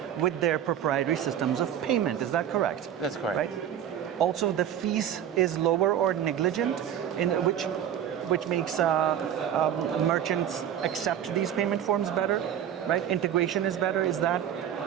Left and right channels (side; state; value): left; quieter; 9.9 dB